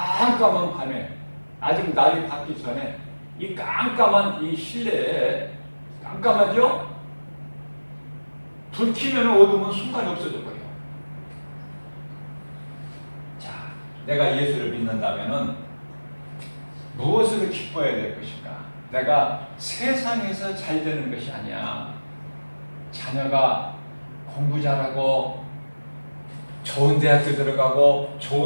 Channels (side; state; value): both; inverted; correlation -1.00